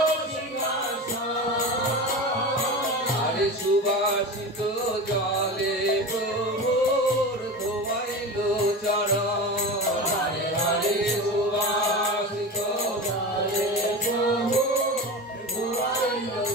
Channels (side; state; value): both; normal; correlation 0.27